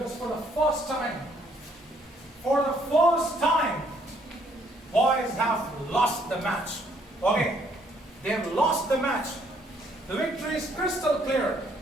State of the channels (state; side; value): normal; both; correlation 0.66